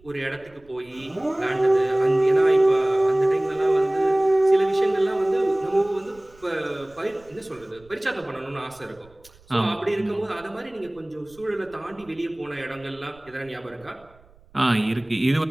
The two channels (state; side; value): noise; right; rumble, 28 dB below the sound